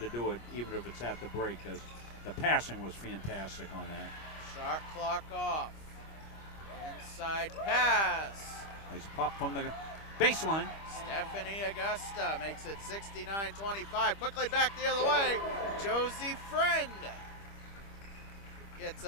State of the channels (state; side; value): late; right; 25 ms